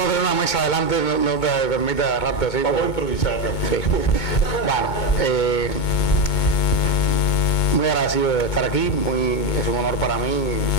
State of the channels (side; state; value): right; late; 2.2 ms